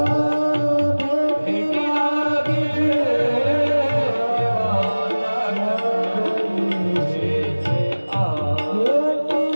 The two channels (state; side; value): inverted; both; correlation -1.00